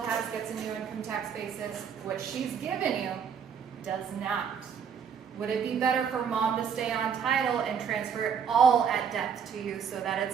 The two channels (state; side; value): quieter; left; 7.2 dB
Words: has gets a new income tax basis. What she's given you does not. Would it be better for mom to stay on title and transfer it all at death to you so that it's